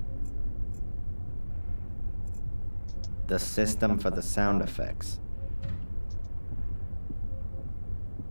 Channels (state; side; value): inverted; both; correlation -1.00